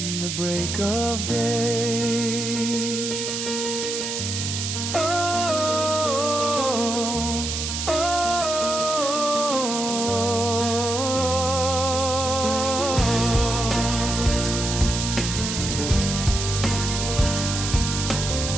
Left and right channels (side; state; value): right; noise; hiss, 3 dB below the sound